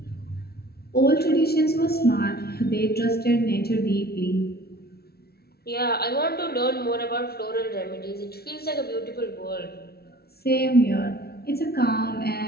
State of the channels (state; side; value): late; right; 0.45 ms